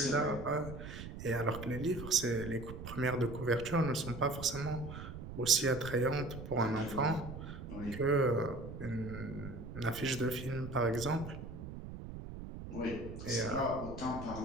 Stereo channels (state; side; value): noise; right; rumble, 10 dB below the sound